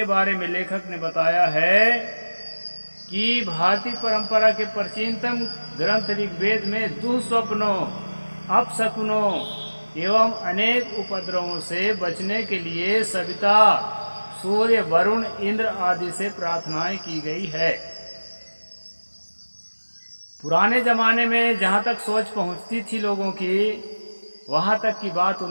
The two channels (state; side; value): inverted; both; correlation -1.00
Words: बारे में लेखक ने बताया है कि भारतीय परंपरा के प्राचीनतम ग्रंथ ऋग्वेद में दुःस्वप्नों, अपशकुनों एवं अनेक उपद्रवों से बचने के लिए सविता, सूर्य, वरुण, इंद्र आदि से प्रार्थनाएं की गई है। पुराने जमाने में जहाँ तक सोच पहुँचती थी लोगों की, वहाँ तक की बात